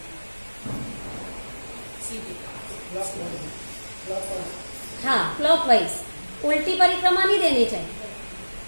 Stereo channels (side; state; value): both; inverted; correlation -1.00